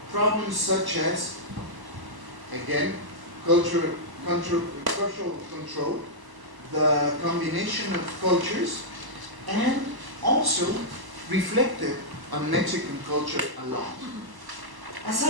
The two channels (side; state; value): left; late; 1.1 ms